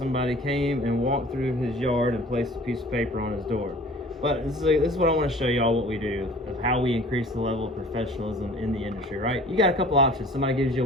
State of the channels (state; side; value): normal; both; correlation 0.47